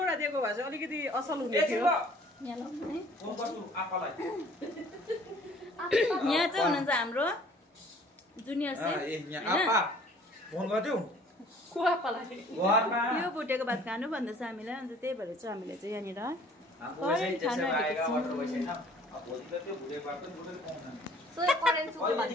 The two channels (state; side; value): normal; both; correlation 0.54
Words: दिएको भए चाहिँ अलिकति असल हुने थियो। यहाँ चाहिँ हुनुहुन्छ हाम्रो जुनियर सेफ। यो भुटेको भात खानु भन्दैछ हामीलाई। अन्त त्यही भएर चाहिँ हामीले चाहिँ यहाँनिर